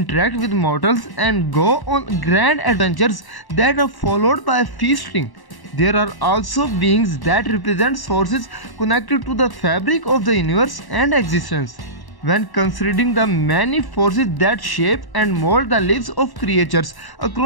with mortals and go on grand adventures that are followed by feasting. There are also beings that represent forces connected to the fabric of the universe and existence. When considering the many forces that shape and mold the lives of creatures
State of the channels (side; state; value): right; late; 1.1 ms